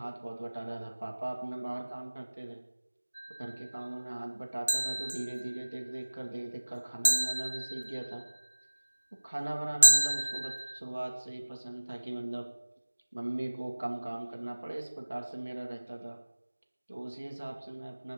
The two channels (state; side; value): inverted; both; correlation -1.00